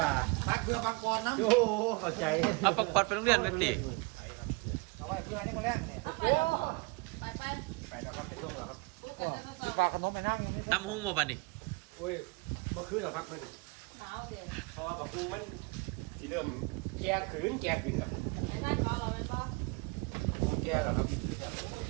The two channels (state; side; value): quieter; left; 27.8 dB